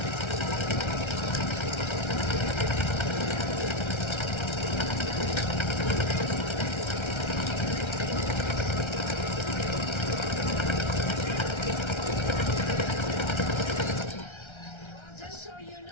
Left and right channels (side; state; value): right; late; 1.3 ms